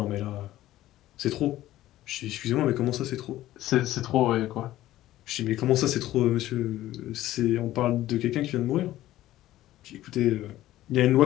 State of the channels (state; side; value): quieter; right; 14.8 dB